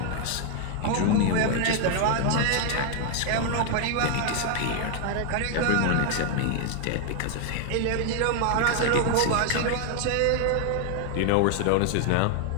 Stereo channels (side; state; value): both; different; correlation 0.00